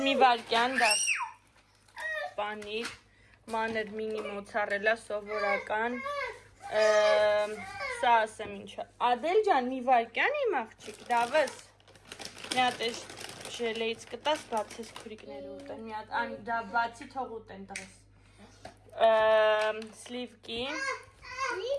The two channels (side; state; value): both; identical; correlation 1.00